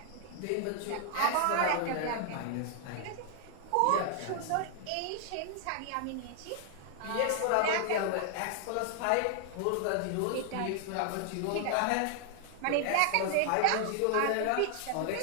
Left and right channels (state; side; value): different; both; correlation 0.00